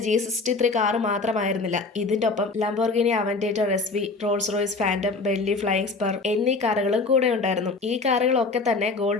G63 കാർ മാത്രമായിരുന്നില്ല, ഇതിന്റെ ഒപ്പം Lamborghini Aventador SV, Rolls Royce Phantom, Bentley Flying Spur എന്നീ കാറുകളും കൂടെ ഉണ്ടായിരുന്നു. ഈ കാറുകളൊക്കെ തന്നെ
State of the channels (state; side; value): quieter; right; 3.8 dB